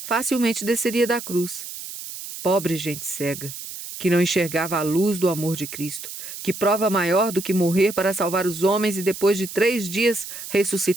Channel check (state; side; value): noise; right; hiss, 10 dB below the sound